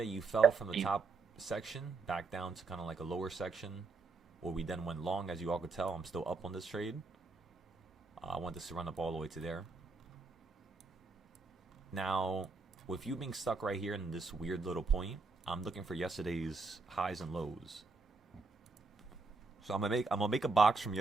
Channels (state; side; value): quieter; left; 4.1 dB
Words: you fell from the top section back down to kind of like a lower section where we then went long. As you all could tell, I'm still up on this trade. I want this to run up all the way to there. Now, with you being stuck right here in this weird little point, I'm looking for yesterday's highs and lows. So I'm gonna make a box from